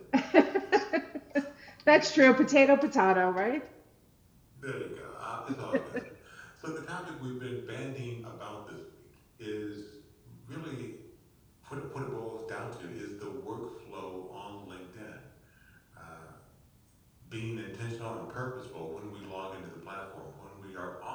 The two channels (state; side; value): identical; both; correlation 1.00